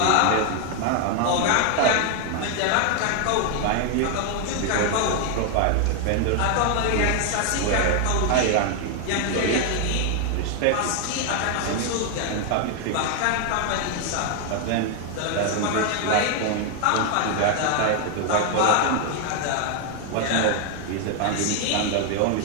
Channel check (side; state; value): both; different; correlation 0.00